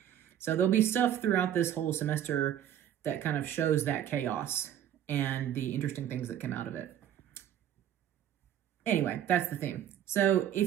So there'll be stuff throughout this whole semester that kind of shows that chaos and the interesting things that come out of it. Anyway, that's the theme. So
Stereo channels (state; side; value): quieter; left; 10.6 dB